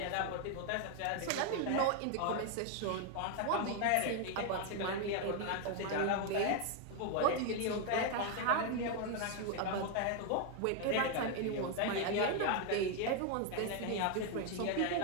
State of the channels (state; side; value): different; both; correlation 0.01